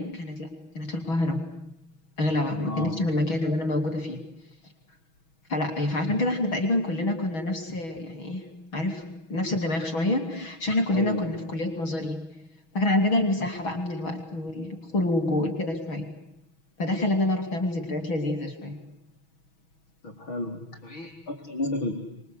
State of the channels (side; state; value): right; late; 6.2 ms